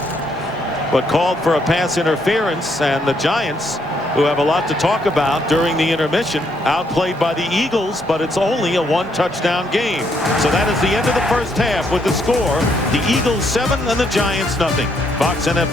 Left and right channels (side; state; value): both; normal; correlation 0.73